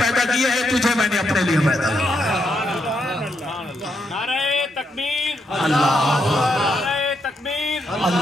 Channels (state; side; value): normal; both; correlation 0.80